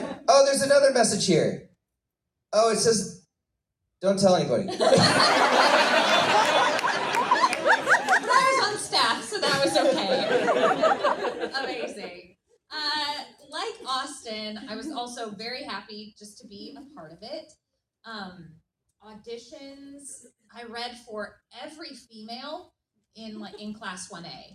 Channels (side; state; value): both; identical; correlation 1.00